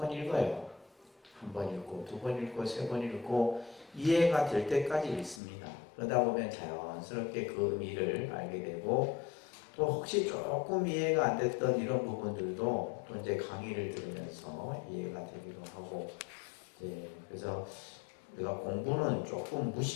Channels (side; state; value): right; drops out; at 5.4 s